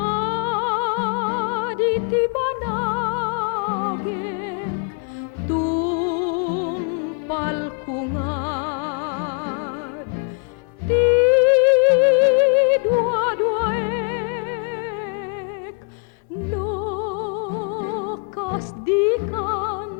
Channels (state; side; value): quieter; right; 39.6 dB